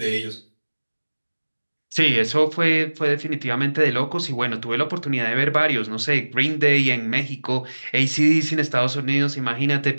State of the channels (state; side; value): inverted; both; correlation -1.00